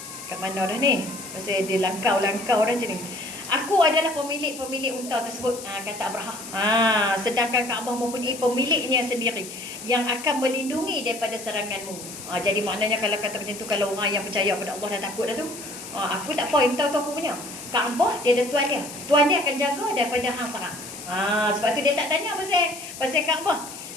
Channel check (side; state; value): left; noise; hiss, 12 dB below the sound